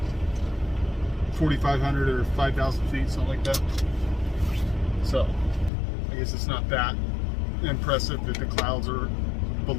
4,500 or 5,000 feet, something like that. So, I guess it's not that impressive that the clouds are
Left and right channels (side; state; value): right; drops out; at 5.7 s